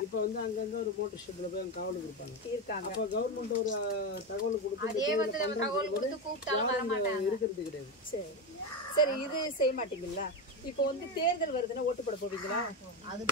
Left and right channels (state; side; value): normal; both; correlation 0.14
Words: இப்ப வந்து அங்க ஒரு மோட்டர் ஷெட்ல போய் காவலுக்கு இருப்பாங்க. அப்ப கவர்மெண்ட் ஒரு தகவல் கொடுத்து அதே வந்து நம்ம தகவல் கொடுத்து கூப்பிட்டாலும் வர மாட்டாங்க. இருக்கிறது கிடையாது. சரி, இது செய்ய மாட்டீங்களா? இப்போ வந்து தேர்தல் வருதுன்னா ஓட்டு போட போவீங்களா? அது